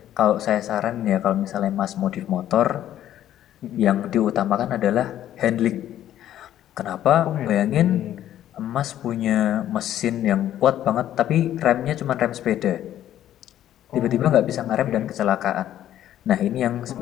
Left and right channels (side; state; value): right; quieter; 11.9 dB